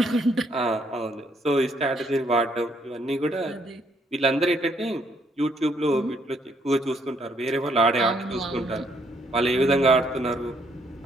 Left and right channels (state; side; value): normal; both; correlation 0.70